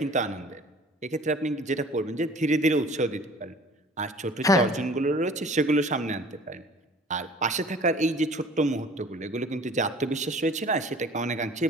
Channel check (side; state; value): both; normal; correlation 0.47